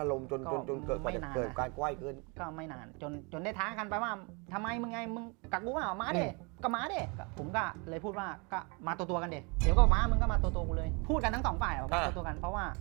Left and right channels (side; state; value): left; quieter; 31.1 dB